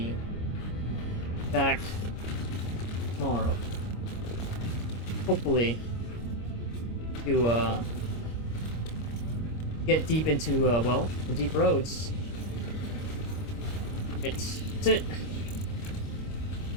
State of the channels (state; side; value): late; right; 25 ms